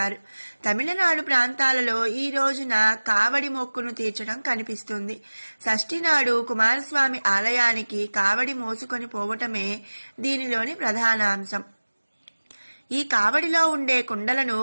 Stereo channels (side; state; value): both; inverted; correlation -1.00